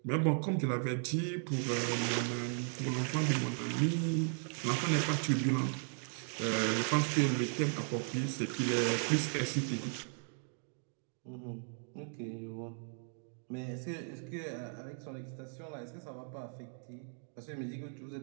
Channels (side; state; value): left; silent; 54 dB below the other